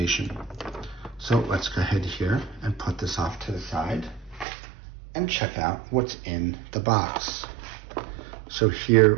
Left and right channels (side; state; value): left; drops out; at 4.5 s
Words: So let's go ahead here and put this off to the side and check out what's in the box. So